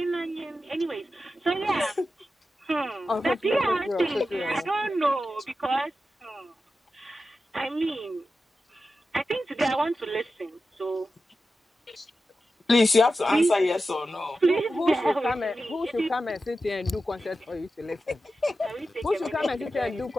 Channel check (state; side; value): normal; both; correlation 0.92